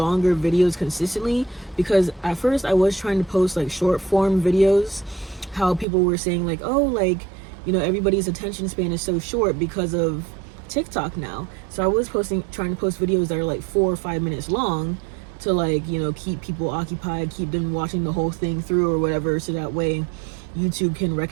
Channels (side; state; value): left; drops out; at 5.9 s